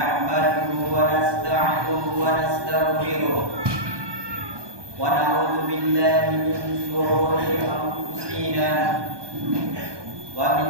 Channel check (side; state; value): left; late; 1.2 ms